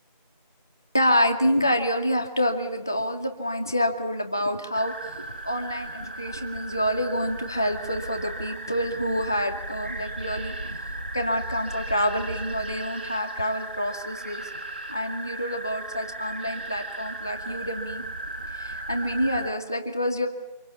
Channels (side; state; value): both; inverted; correlation -0.72